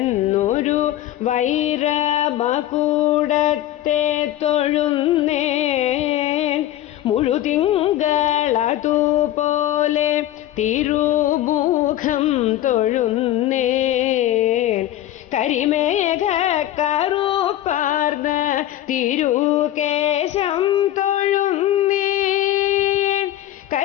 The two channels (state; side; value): quieter; right; 13.5 dB